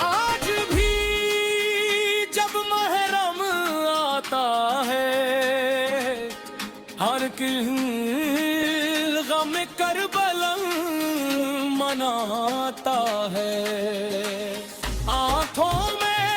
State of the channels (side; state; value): both; identical; correlation 1.00